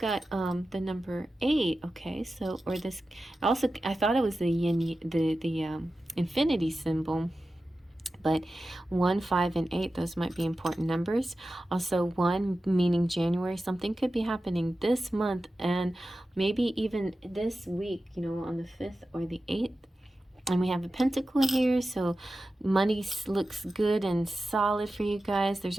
the number 8, okay? So, or this, also, I thought it was the yin, the infinity symbol. But 1, 5, and 8, those might be important numbers. Also 1 meaning January. Something could be happening this month, and maybe even this week, on the 5th or the 8th. And we have a pentacle here, so money looks good and solid for you guys. There's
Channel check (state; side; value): normal; both; correlation 0.94